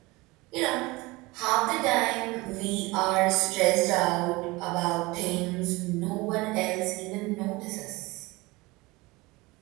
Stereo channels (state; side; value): quieter; left; 22.6 dB